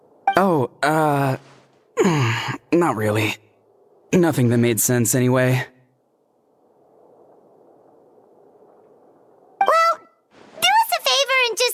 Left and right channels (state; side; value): identical; both; correlation 1.00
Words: Oh, not really. Nothing that made sense anyway. Well, do us a favor and